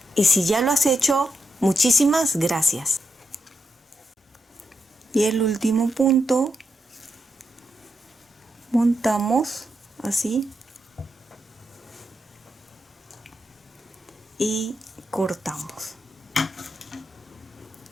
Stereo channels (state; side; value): normal; both; correlation 0.85